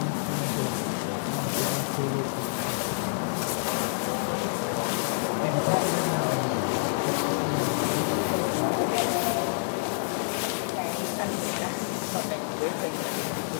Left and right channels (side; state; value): right; silent; digital silence